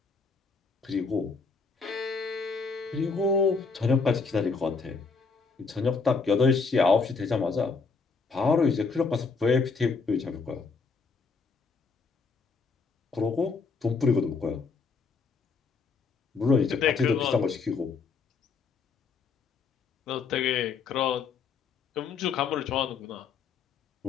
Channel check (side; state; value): right; quieter; 4.8 dB